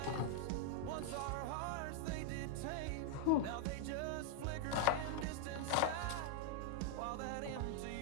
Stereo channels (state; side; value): different; both; correlation 0.00